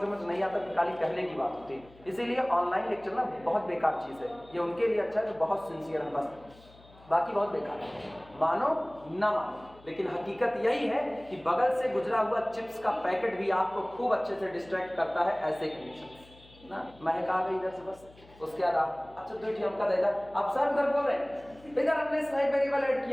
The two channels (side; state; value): left; noise; hum, 25 dB below the sound